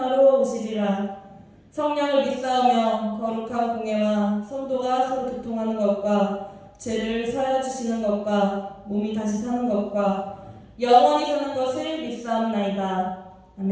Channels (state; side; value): identical; both; correlation 1.00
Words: 오시리라. 성령을 믿사오며 거룩한 공예와 성도가 서로 교통하는 것과 죄를 사하여 주시는 것과 몸이 다시 사는 것과 영원히 사는 것을 믿사옵나이다.